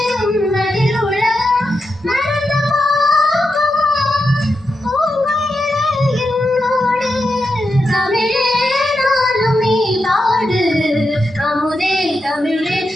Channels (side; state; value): both; normal; correlation 0.87